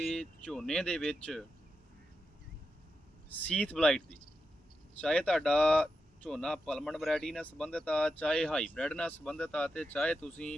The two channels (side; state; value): both; normal; correlation 0.88